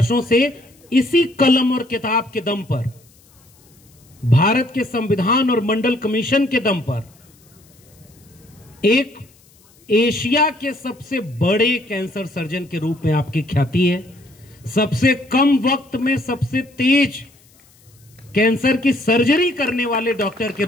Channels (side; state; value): left; noise; hiss, 30 dB below the sound